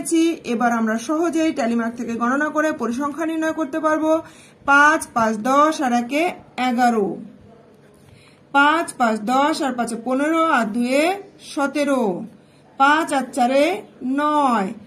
এবার আমরা সহজেই ট্যালি মার্ক থেকে গণনা করে পরিসংখ্যা নির্ণয় করতে পারবো। 5, 5, 10 আর 1 11, 5, 5, 10 আর 5 15 আর 2 17, 5 আর 4 9,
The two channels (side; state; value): both; identical; correlation 1.00